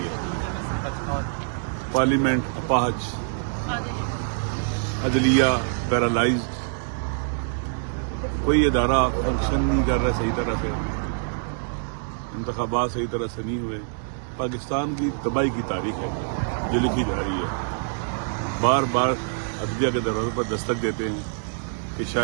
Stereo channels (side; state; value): left; silent; digital silence